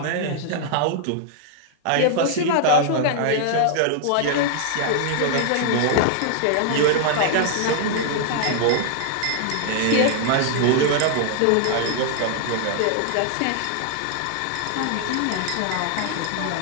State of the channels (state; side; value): different; both; correlation -0.01